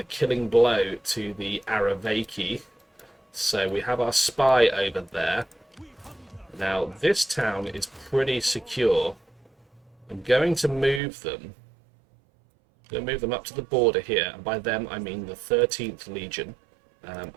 killing blow to the Aravaki. So we have our spy over there. Now, this town is pretty secure. I'm going to move them. Up to the border here, and by them I mean the 13th Legion.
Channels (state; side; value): drops out; left; at 11.0 s